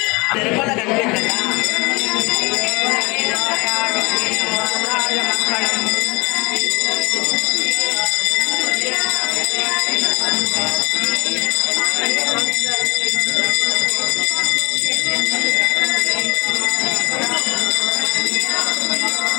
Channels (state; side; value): quieter; right; 25.9 dB